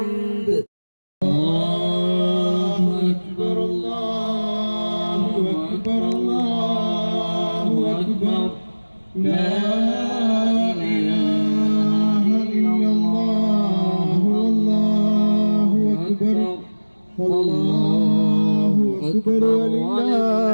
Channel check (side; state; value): both; inverted; correlation -1.00